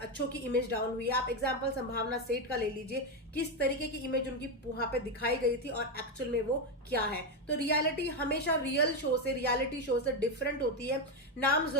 की इमेज डाउन हुई है। आप एग्जांपल संभावना सेठ का ले लीजिए, किस तरीके की इमेज उनकी वहां पे दिखाई गई थी और एक्चुअल में वो क्या है। तो रियलिटी हमेशा रियलिटी शो से डिफरेंट होती है। नाम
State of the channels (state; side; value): normal; both; correlation 0.08